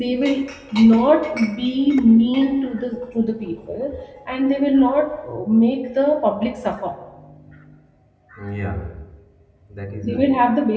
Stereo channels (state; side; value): identical; both; correlation 1.00